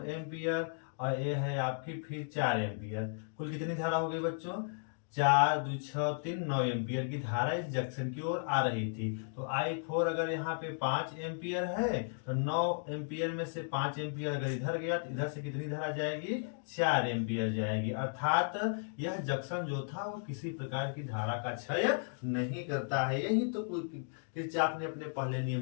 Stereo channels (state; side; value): silent; right; digital silence